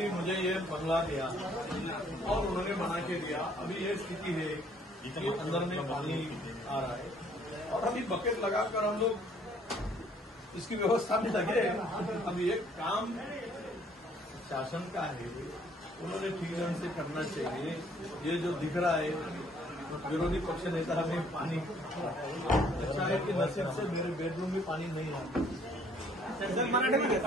मुझे ये बंगला दिया और उन्होंने बना के दिया। अभी ये स्थिति है कि अंदर में पानी आ रहा है और अभी बकेट लगाकर हम लोग इसकी व्यवस्था में लगे। अभी एक काम शासन का है, उन्होंने ठीक ढंग से करना चाहिए। ये जो दिख रहा है विरोधी पक्ष नेता हमें पानी, अच्छा है कि नसीब से मेरे बेडरूम में पानी नहीं आता। सर मराठी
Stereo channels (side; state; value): both; normal; correlation 0.61